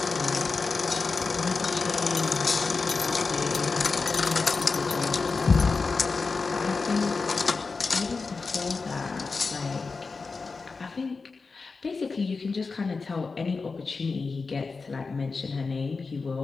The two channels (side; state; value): right; quieter; 4.4 dB